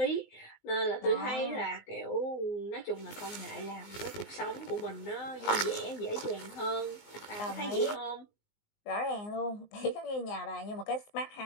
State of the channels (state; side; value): late; right; 19 ms